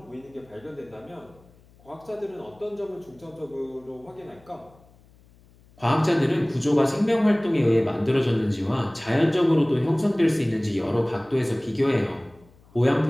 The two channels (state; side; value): noise; left; hum, 28 dB below the sound